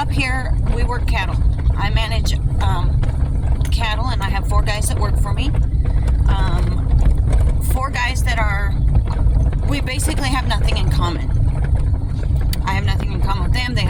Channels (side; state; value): both; identical; correlation 1.00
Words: here, we work cattle. I manage cattle, and I have 4 guys that work for me. 4 guys that we basically have nothing in common. I have nothing in common with them. They